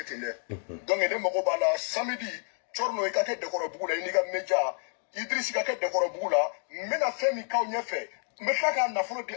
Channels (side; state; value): right; silent; 58 dB below the other